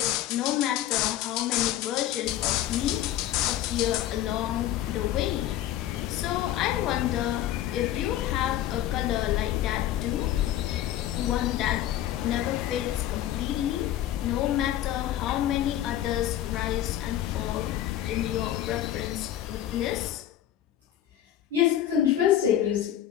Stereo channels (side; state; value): right; quieter; 12.2 dB